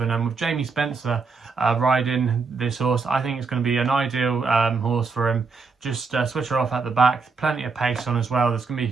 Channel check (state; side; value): quieter; left; 4.7 dB